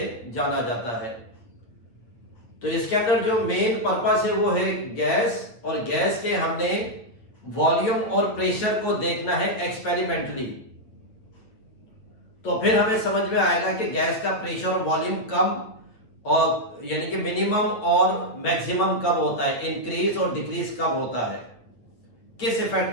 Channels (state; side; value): late; right; 8.8 ms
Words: जाना जाता है। तो इसके अंदर जो मेन पर्पस है वो है गैस, और गैस के हमने वॉल्यूम और प्रेशर को देखना है एक्सपेरिमेंटली। तो फिर हमें समझ में आएगा कि गैस का प्रेशर और वॉल्यूम कम और यानी कि मिनिमम और मैक्सिमम कब होता है, इंक्रीज और डिक्रीज कब होता है, किस